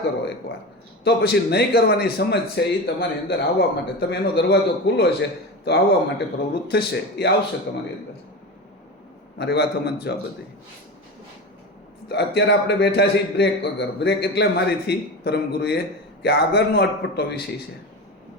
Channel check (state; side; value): normal; both; correlation 0.25